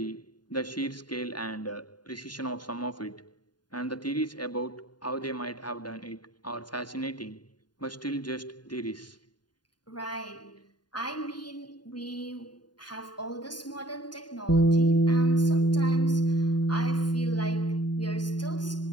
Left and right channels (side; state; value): right; late; 0.70 ms